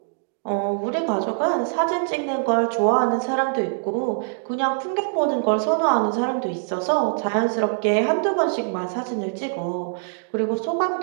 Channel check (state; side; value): silent; left; digital silence